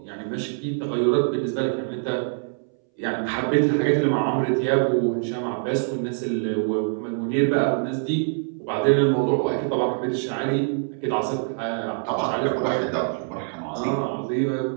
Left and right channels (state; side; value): silent; left; 62 dB below the other